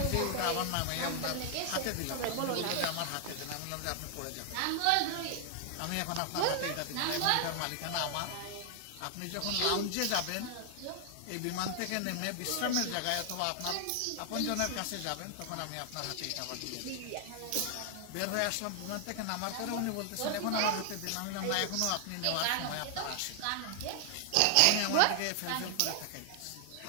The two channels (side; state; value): both; different; correlation 0.00